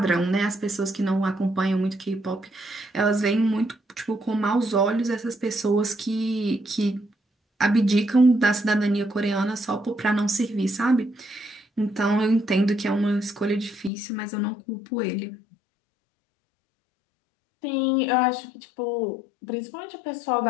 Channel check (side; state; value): right; drops out; at 13.9 s